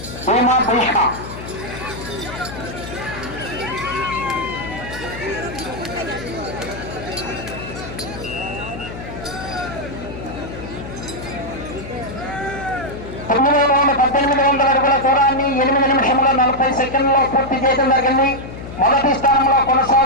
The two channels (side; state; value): left; noise; hum, 11 dB below the sound